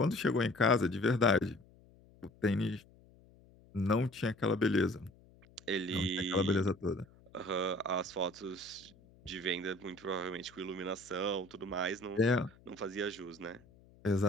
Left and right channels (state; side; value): noise; left; hum, 26 dB below the sound